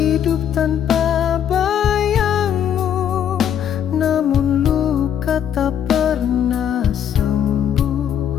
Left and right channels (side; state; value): right; quieter; 9.2 dB